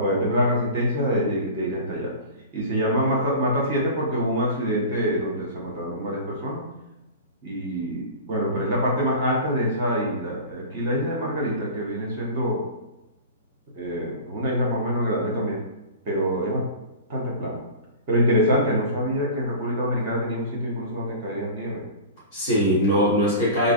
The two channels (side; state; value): both; inverted; correlation -0.35